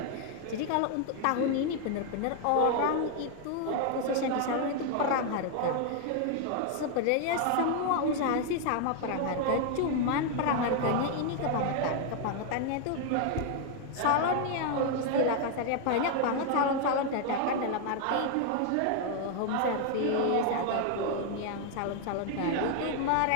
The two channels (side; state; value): both; different; correlation 0.00